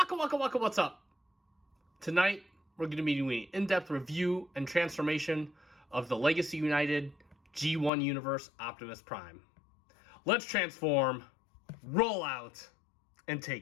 What's up? Tonight, we're going to be doing an in-depth review and transformation of the Legacy United G1 Universe Optimus Prime. Let's transform, roll out, and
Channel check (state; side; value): drops out; right; at 7.9 s